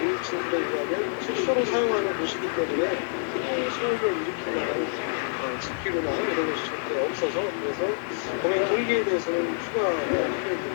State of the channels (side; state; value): right; silent; digital silence